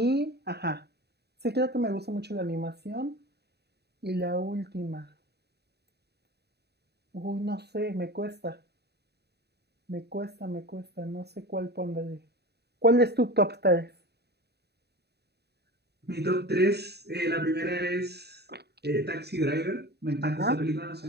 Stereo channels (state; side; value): late; left; 0.48 ms